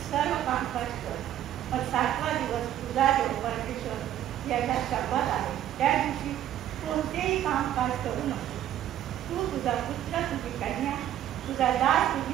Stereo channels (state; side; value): quieter; left; 11.7 dB